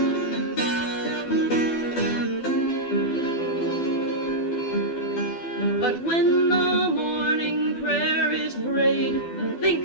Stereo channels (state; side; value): late; right; 12 ms